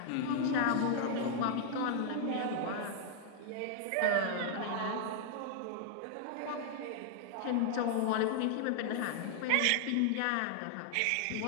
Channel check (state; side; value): different; both; correlation 0.00